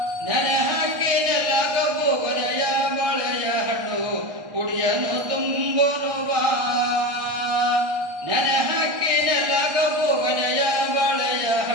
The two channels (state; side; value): late; left; 1.6 ms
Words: ನೆನೆ ಹಾಕಿನೆಲ್ಲ ಕಬ್ಬು ಕೊನೆಯ ಬಾಳೆಯ ಹಣ್ಣು ಕುಡಿಯನು ತುಂಬೋನು ಬಾ, ನೆನೆ ಹಾಕಿನೆಲ್ಲ ಕಬ್ಬು ಕೊನೆಯ ಬಾಳೆಯ